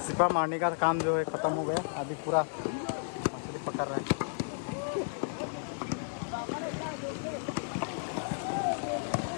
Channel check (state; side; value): silent; right; digital silence